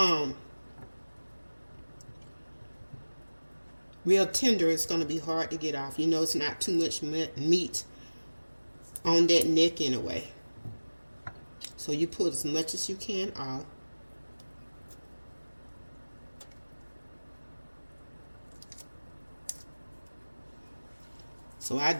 real tender, it's going to be hard to get off. You know, it's not too much meat on that neck anyway. So you pull as much as you can off. So I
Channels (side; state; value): both; inverted; correlation -1.00